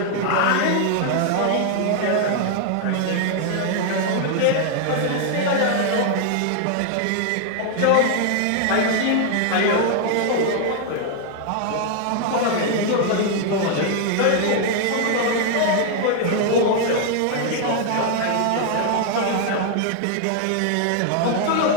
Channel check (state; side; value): different; both; correlation 0.00